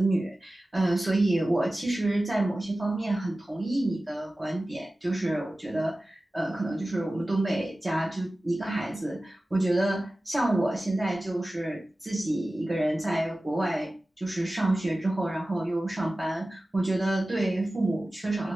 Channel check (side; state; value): both; normal; correlation 0.96